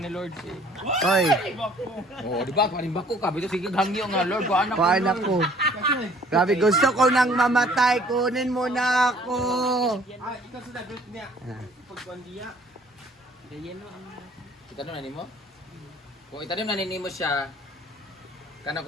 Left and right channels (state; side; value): normal; both; correlation 0.56